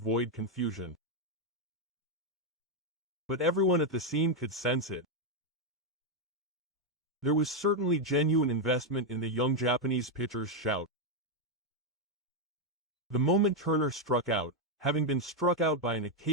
confusion. But everyone at the scene could sense it. There was certainly genuine investment in the young Japanese pitcher's shout. The moment Turner struck out, having been struck out by an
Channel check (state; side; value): normal; both; correlation 0.02